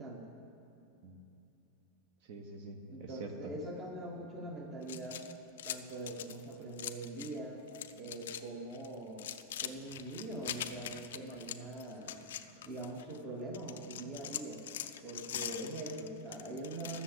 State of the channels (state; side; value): normal; both; correlation -0.10